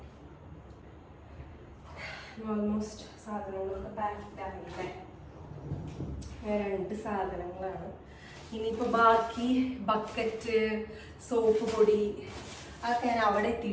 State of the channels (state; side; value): identical; both; correlation 1.00